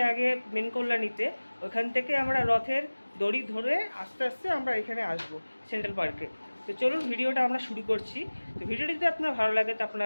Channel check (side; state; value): both; inverted; correlation -1.00